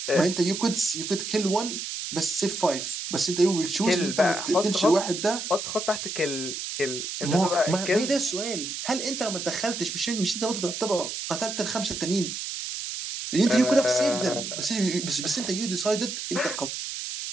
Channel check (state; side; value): noise; right; hiss, 5 dB below the sound